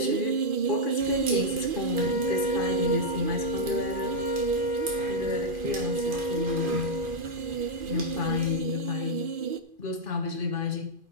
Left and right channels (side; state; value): left; late; 2.4 ms